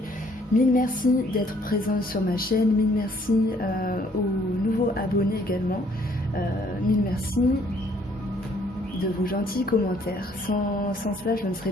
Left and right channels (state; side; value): normal; both; correlation 0.63